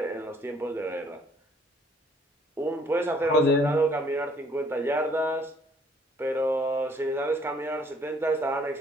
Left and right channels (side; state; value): both; normal; correlation 0.61